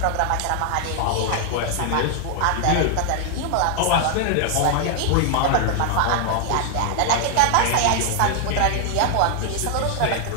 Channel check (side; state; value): both; different; correlation 0.00